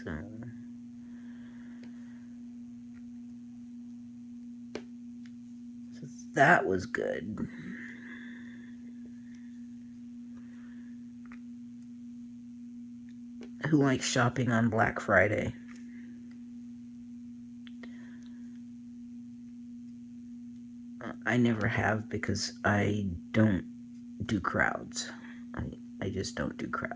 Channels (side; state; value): both; identical; correlation 1.00